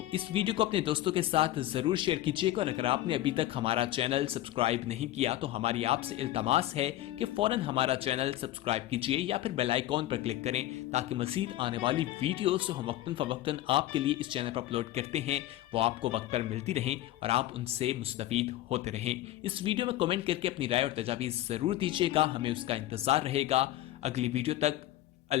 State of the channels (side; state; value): right; quieter; 14.6 dB